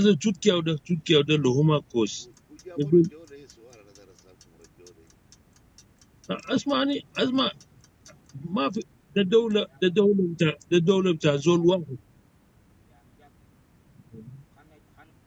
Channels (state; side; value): identical; both; correlation 1.00